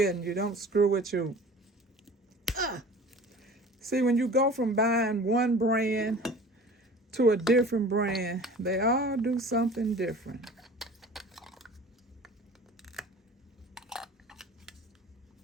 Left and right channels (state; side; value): normal; both; correlation 0.43